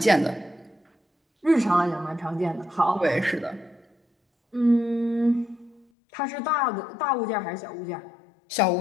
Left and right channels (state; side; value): drops out; right; at 5.9 s